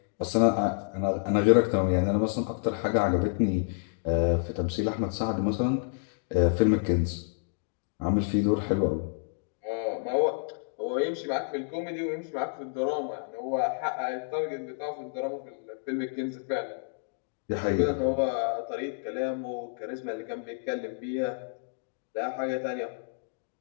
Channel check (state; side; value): silent; right; digital silence